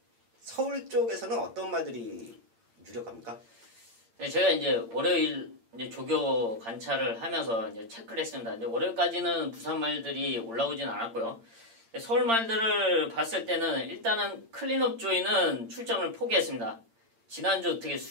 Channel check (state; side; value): late; left; 8.8 ms